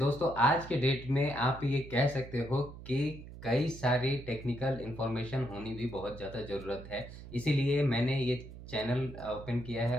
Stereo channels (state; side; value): noise; right; hum, 14 dB below the sound